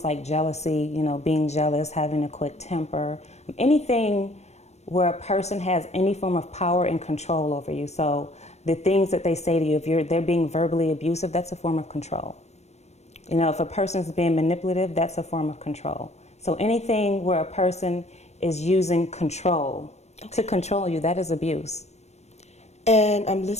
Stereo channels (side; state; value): right; late; 0.32 ms